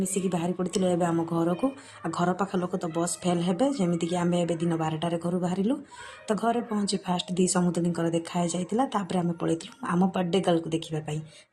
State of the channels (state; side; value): identical; both; correlation 1.00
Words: ମିଶିକି ବାହାରି ପଡ଼ିଥିଲୁ ଏବେ ଆମ ଘରକୁ। ଆଉ ଘର ପାଖ ଲୋକ ତ ବସ୍ ଫେଲ୍ ହେବେ, ଯେମିତିକି ଆମେ ଏବେ ଦିନ 12ଟାରେ ଘରୁ ବାହାରିଲୁ। ତ ଘରେ ପହଞ୍ଚି ଫାଷ୍ଟ ଦି ସମୁଦୁଣୀଙ୍କର ଦେଖା ହେଇଯାଇଥିଲା। ତାପରେ ଆମେ ପଳେଇଥିଲୁ ଆମ ବାର୍ଥଡେ ଗାର୍ଲକୁ ଦେଖିବା ପାଇଁ।